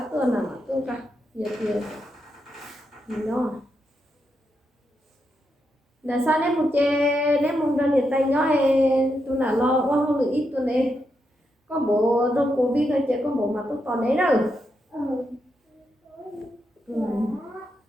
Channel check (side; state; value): both; normal; correlation 0.83